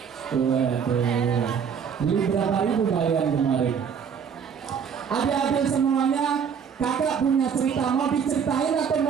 Waduh, beli berapa ribu kalian kemarin? Adik-adik semuanya, kakak punya cerita, mau diceritain atau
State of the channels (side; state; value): left; quieter; 7.0 dB